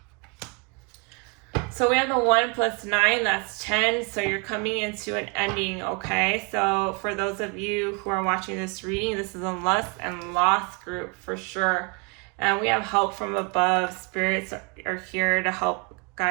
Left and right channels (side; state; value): left; quieter; 32.5 dB